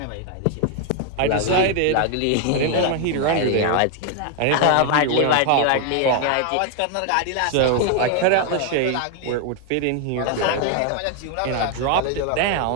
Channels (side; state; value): both; different; correlation 0.01